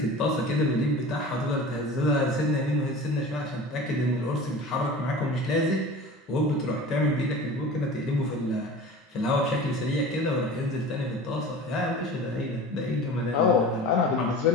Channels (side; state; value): both; normal; correlation 0.37